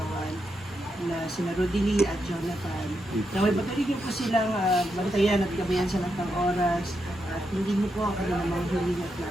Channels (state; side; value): normal; both; correlation 0.83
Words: na sina Rodely at Jonathan. Naway patuloy niyo po silang bantayan at gabayan sa lahat ng oras at hindi niyo po ako na mga huling at